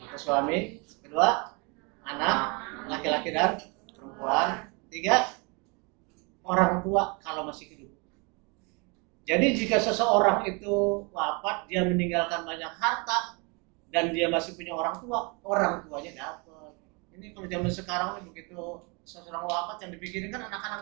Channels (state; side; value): quieter; left; 31.0 dB